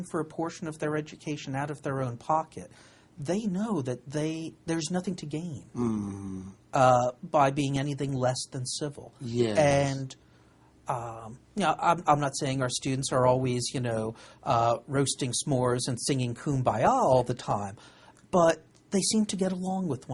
for a portion of their education out of their own pocket. They know that there's nothing to gain by being anything less than civil. And you know, I'm not saying our students are always, you know, roasting s'mores and singing Kumbaya all the time, but they seem to get along with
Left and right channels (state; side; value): identical; both; correlation 1.00